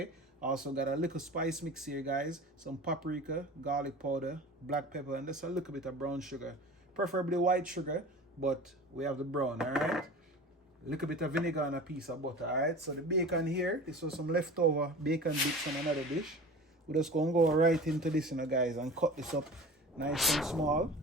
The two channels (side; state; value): both; normal; correlation 0.38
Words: Also got a little spice mix here, guys, some paprika, garlic powder, black pepper, and just a little bit of brown sugar, preferably white sugar, but we have the brown. All right, a little bit of vinegar and a piece of butter. All right, so the bacon here, this was some leftover bacon bits from another dish. We're just going to go right into this, guys, and cut this up nice and small.